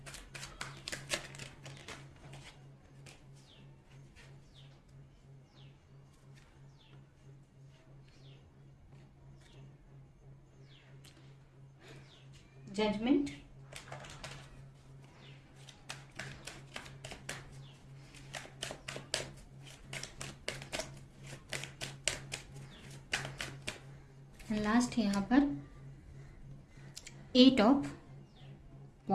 judgment, and last है यहाँ पर 8 ऑफ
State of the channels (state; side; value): identical; both; correlation 1.00